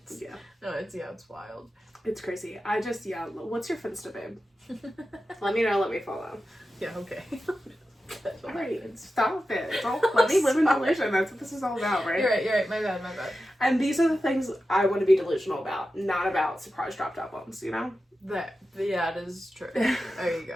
wild. It's crazy. What's your Finsta, babe? Let me know. Let me follow. Yeah. Okay. Alright, stop it. Let me live in delusion. That's what this is all about, right? You're right. My bad. And these are the things I want to be delusional about, not about surprise dropped albums, you know? It is true. There you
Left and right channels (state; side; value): normal; both; correlation 0.92